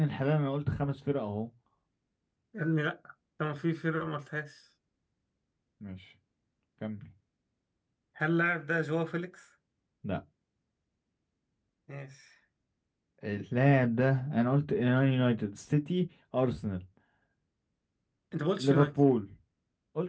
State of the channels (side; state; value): both; identical; correlation 1.00